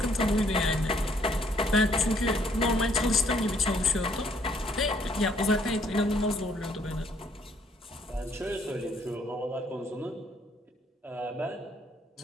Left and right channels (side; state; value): both; normal; correlation 0.66